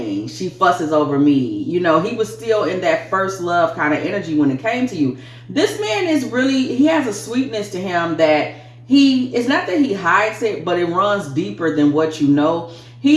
She fusses over me. You know, he was still in that first love kind of energy when it came to you. This man is really, he has a sweetness to him that it's not that he hides it, but it runs deeper than what you know.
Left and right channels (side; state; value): both; identical; correlation 1.00